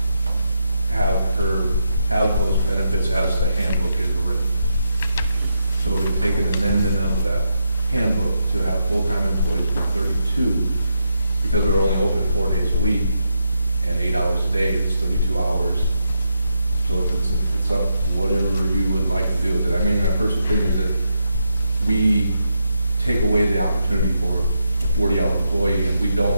have her have those benefits as the handbook is written. So we would take an amendment of that handbook to have full-time employees for 32, because they're only open 4 days a week, and 8 hours a day, it's 32 hours. So it's up, whatever you would like to do with it. I mean, my personal thing is that we take away the opportunity for a 40-hour employee, and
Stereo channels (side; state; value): both; inverted; correlation -0.83